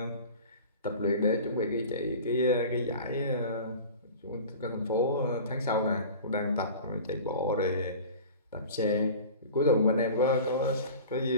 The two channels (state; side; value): inverted; both; correlation -0.38